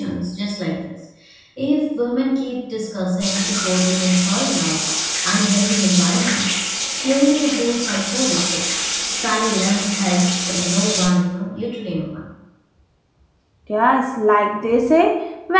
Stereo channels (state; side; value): identical; both; correlation 1.00